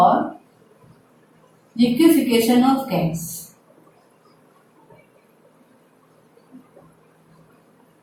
लिक्विफिकेशन ऑफ गैस।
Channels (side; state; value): both; identical; correlation 1.00